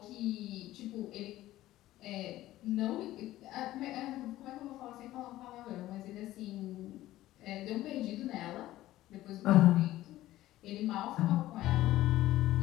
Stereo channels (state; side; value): quieter; right; 15.3 dB